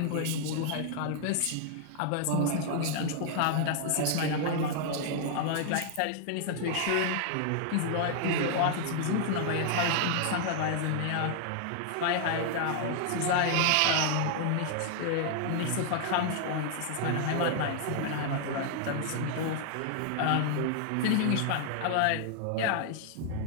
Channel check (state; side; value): different; both; correlation -0.01